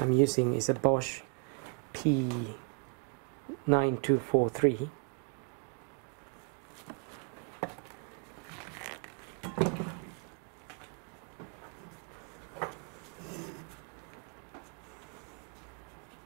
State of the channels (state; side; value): quieter; left; 38.0 dB